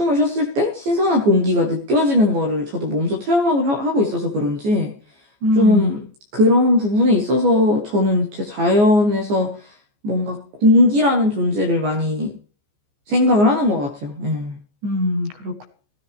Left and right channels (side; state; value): left; late; 14 ms